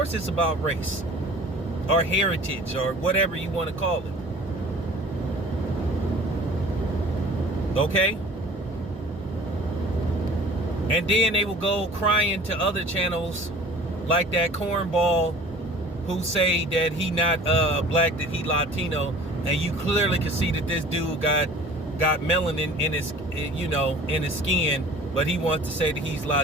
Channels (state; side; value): normal; both; correlation 0.46